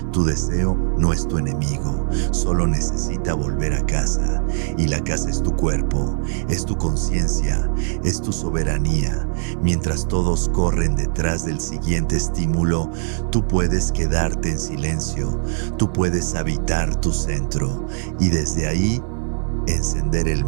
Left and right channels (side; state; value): left; silent; digital silence